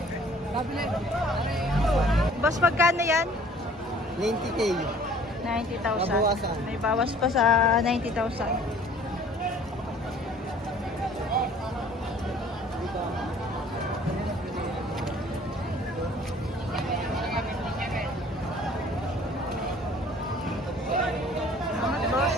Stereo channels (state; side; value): normal; both; correlation 0.53